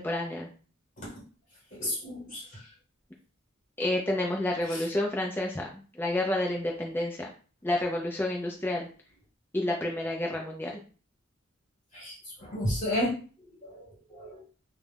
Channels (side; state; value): both; normal; correlation 0.70